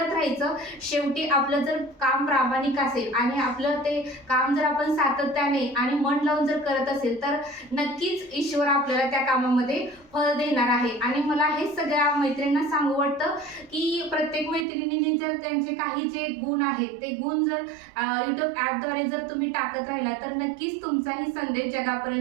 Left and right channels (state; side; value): drops out; left; at 14.7 s